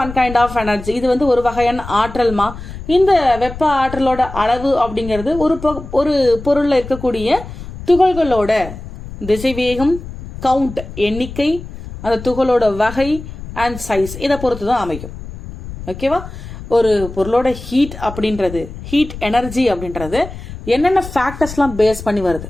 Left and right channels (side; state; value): left; noise; rumble, 12 dB below the sound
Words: one kind of energy. இது வந்து ஒரு வகையான ஆற்றல்மா. இந்த வெப்ப ஆற்றலோட அளவு அப்படிங்கிறது ஒரு பொருள்ல இருக்கக்கூடிய துகள்களோட திசைவேகம், கவுண்ட் எண்ணிக்கை, அந்த துகளோட வகை அண்ட் சைஸ் இதை பொறுத்து தான் அமையும். ஓகேவா? ஒரு பொருளோட ஹீட் அப்படின்றது, ஹீட் எனர்ஜி அப்படின்றது என்னென்ன ஃபேக்டர்ஸ்லாம் பேஸ் பண்ணி வருது.